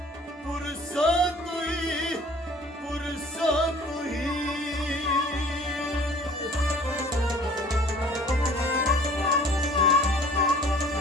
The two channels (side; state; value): both; normal; correlation 0.50